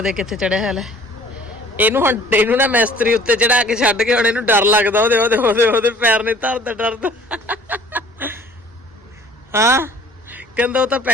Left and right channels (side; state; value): both; normal; correlation 0.51